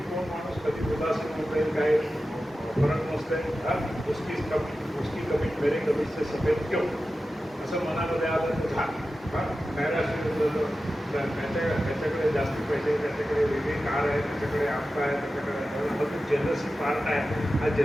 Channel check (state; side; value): normal; both; correlation 0.93